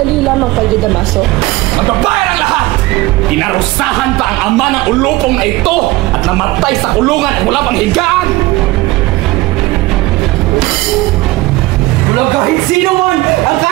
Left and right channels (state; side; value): quieter; left; 19.1 dB